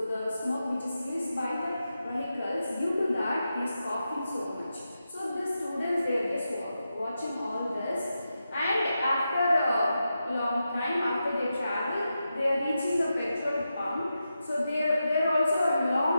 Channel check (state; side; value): inverted; both; correlation -0.89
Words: the smoke which is released by the vehicles, due to that he is coughing so much. So the students, they are just watching all this, and after a long time, after they travel, they are reaching a petrol pump. So there also a